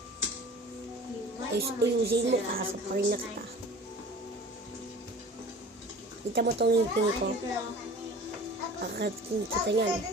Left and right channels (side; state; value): both; normal; correlation 0.43